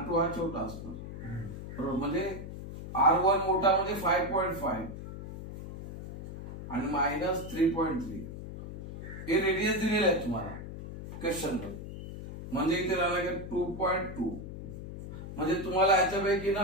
हा छोटा असणार बरोबर. म्हणजे R1 मोठा म्हणजे 5.5 आणि मायनस 3.3 हे रेडियस दिलेले आहे तुम्हाला क्वेश्चन मध्ये. म्हणजे इथे राहिला 2.2. म्हणजे तुम्हाला याच्यापैकी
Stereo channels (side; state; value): left; noise; hum, 10 dB below the sound